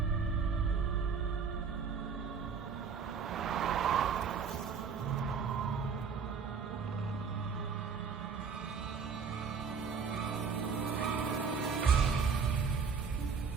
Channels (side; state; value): left; quieter; 6.0 dB